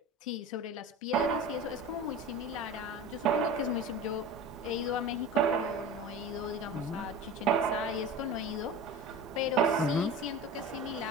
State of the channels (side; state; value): both; normal; correlation 0.33